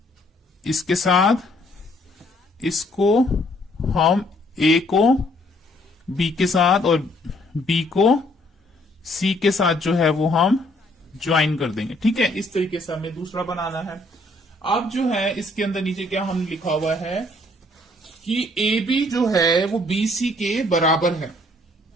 इसके साथ, इसको हम ए को बी के साथ और बी को सी के साथ जो है वो हम ज्वाइन कर देंगे। ठीक है, इस तरीके से हमें दूसरा बनाना है। अब जो है इसके अंदर नीचे क्या हम लिखा हुआ है कि ए बी जो है वो बी सी के बराबर है।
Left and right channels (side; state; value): both; normal; correlation 0.64